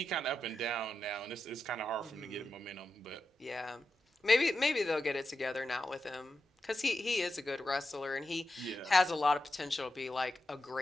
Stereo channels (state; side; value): normal; both; correlation 0.89